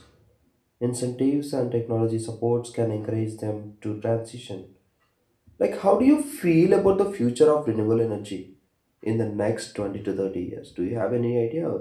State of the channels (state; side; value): identical; both; correlation 1.00